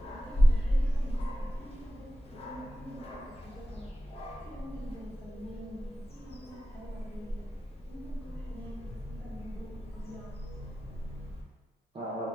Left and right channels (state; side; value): normal; both; correlation 0.94